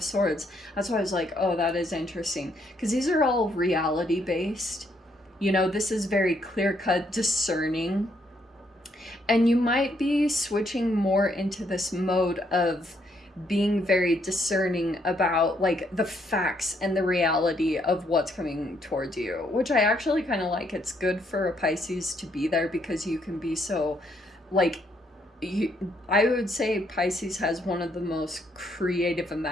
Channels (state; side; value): normal; both; correlation 0.73